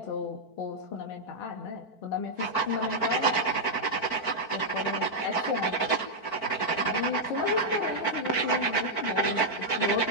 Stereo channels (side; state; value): right; late; 4.5 ms